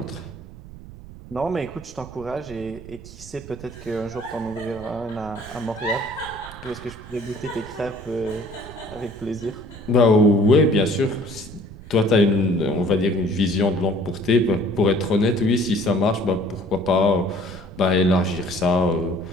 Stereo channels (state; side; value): noise; right; rumble, 16 dB below the sound